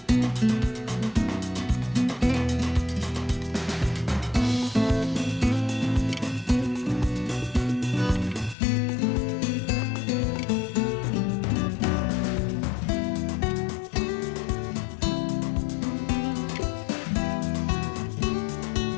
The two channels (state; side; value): drops out; right; at 8.6 s